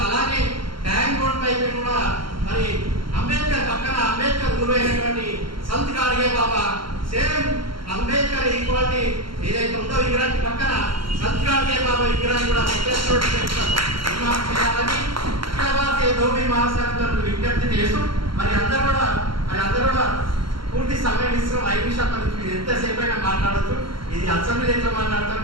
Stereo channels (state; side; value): late; left; 0.73 ms